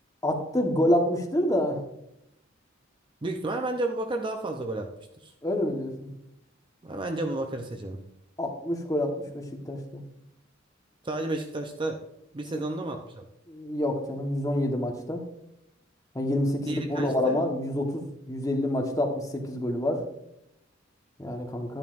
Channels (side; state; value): both; normal; correlation 0.65